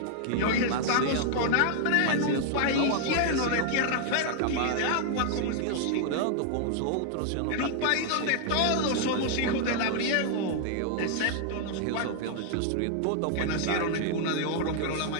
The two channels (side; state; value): both; different; correlation 0.00